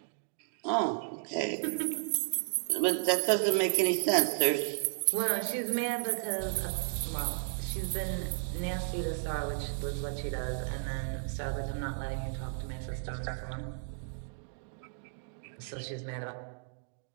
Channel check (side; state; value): left; silent; digital silence